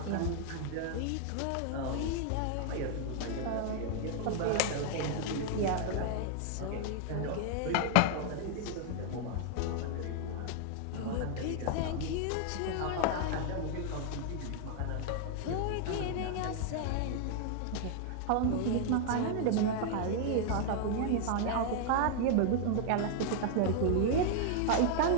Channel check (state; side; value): different; both; correlation 0.00